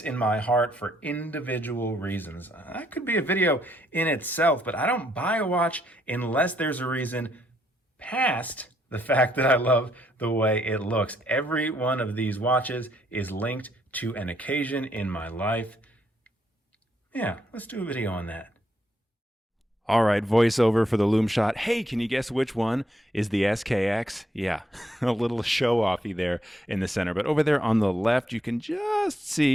my heart for individual reasons. That could be a video in itself, but I don't buy a watch unless there's a reason past the fact that I love the way it looks. Every one of these watches is linked to an occasion in my life. Yeah, let's do a video on that. All right, voiceover for the loom shot. Hey, can you guess which one is the SKX? Yeah, a little show-offy there in the center. But over there on the left, you can just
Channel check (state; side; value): normal; both; correlation 0.74